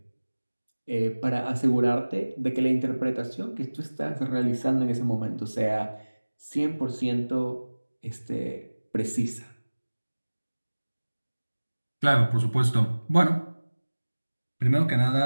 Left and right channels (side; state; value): both; inverted; correlation -1.00